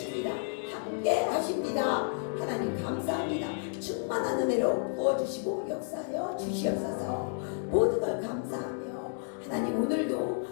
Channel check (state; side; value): silent; right; digital silence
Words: 함께 하십니다. 하나님 감사합니다. 충만한 은혜로 부어주시고 역사하여 주시옵소서. 모든 걸 감사하며 하나님 오늘도